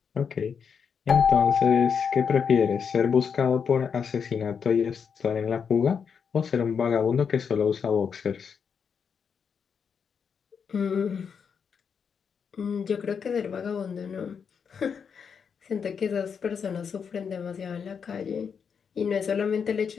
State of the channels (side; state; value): right; quieter; 6.6 dB